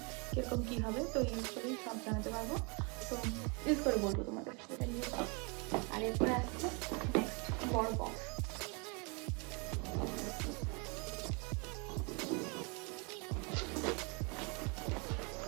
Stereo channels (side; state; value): left; quieter; 32.4 dB